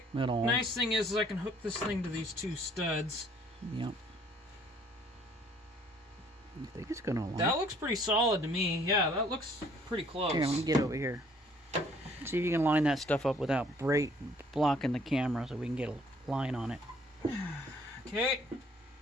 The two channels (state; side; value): normal; both; correlation 0.60